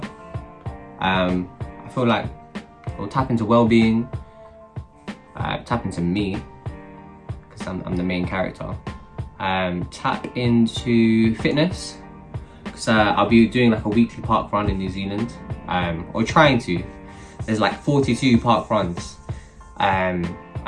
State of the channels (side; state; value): both; identical; correlation 1.00